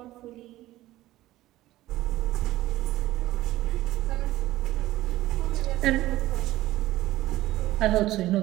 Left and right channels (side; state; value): left; quieter; 16.1 dB